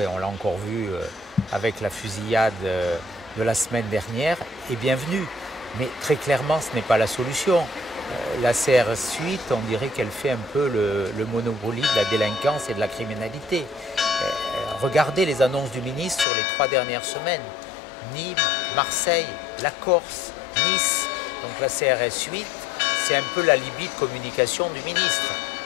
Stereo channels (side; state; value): right; drops out; at 16.2 s